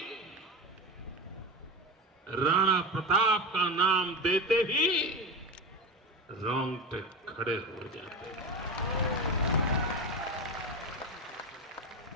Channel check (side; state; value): both; normal; correlation 0.22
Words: राणा प्रताप का नाम देते ही रोंगटे खड़े हो जाते हैं।